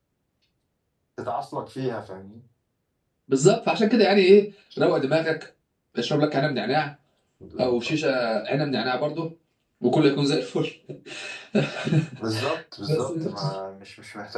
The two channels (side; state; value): both; identical; correlation 1.00